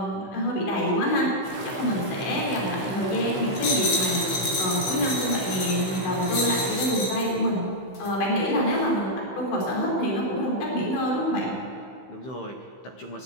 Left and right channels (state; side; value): late; right; 16 ms